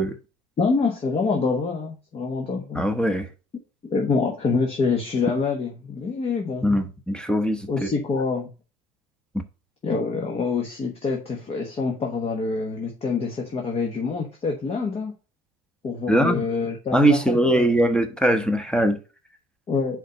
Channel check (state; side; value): normal; both; correlation 0.67